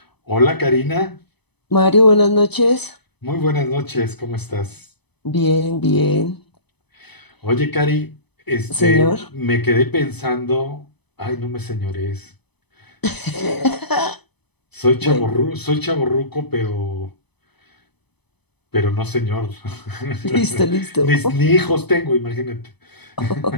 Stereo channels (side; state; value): right; late; 0.99 ms